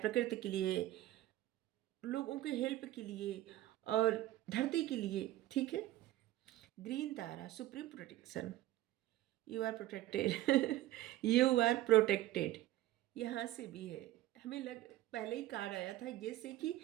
के लिए, लोगों के हेल्प के लिए और धरती के लिए, ठीक है। Green Tara, supreme protection, you are protected you are protected, यहाँ से भी है। हमें पहले ही कार्ड आया था जैसे कि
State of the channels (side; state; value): left; quieter; 15.2 dB